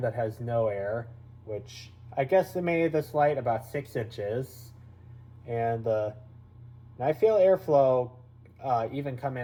that has no air, which I guesstimated this light about 6 inches. And I feel airflow even coming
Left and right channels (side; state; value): both; identical; correlation 1.00